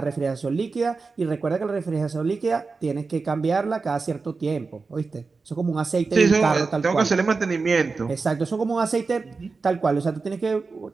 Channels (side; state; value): left; quieter; 4.3 dB